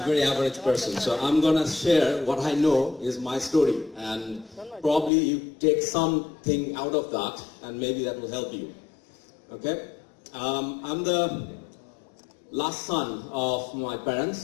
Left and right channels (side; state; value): right; drops out; at 5.1 s